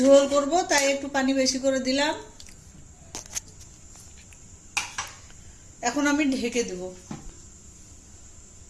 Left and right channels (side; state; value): both; identical; correlation 1.00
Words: করব তাই একটু পানি বেশি করে দিলাম। এখন আমি ঢেকে দেব।